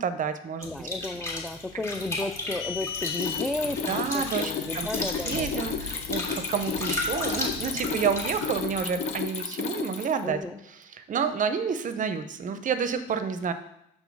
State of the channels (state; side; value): normal; both; correlation 0.25